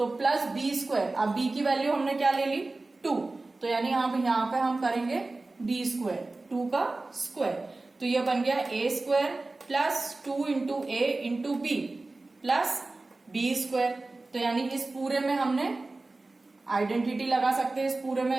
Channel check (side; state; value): left; quieter; 3.2 dB